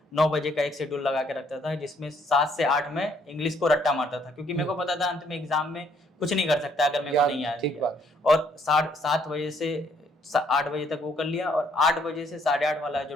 9 बजे का एक शेड्यूल लगा के रखता था, जिसमें 7 से 8 में इंग्लिश को रट्टा मारता था, क्योंकि मेरे को पता था अंत में एग्जाम में कुछ नहीं कर सकता अगर मेरे को नहीं आया। ठीक बात। और 7 बजे से 8 बजे तक वो कर लिया, और 8 बजे से 8:30 वाला जो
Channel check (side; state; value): both; normal; correlation 0.67